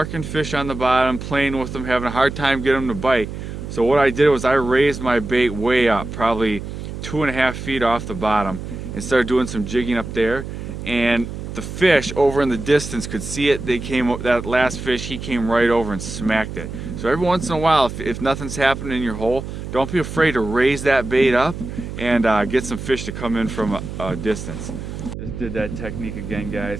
fish on the bottom, playing with them, having a hard time getting them to bite. So what I did was I raised my bait way up, probably 2.5 feet off the bottom, and started doing some jigging up there. And the fish over in the distance could see it. That last fish, he came right over and smacked it. So every once in a while, if nothing's happening in your hole, don't be afraid to raise that bait up and get some fish to come in from a distance. Just did that technique again,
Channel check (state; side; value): noise; right; hum, 8 dB below the sound